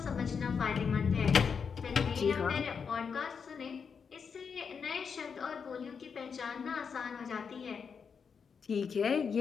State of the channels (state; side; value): quieter; right; 6.2 dB